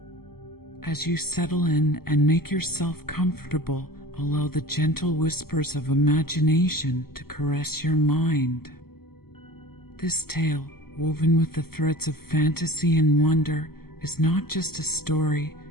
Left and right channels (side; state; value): right; late; 0.95 ms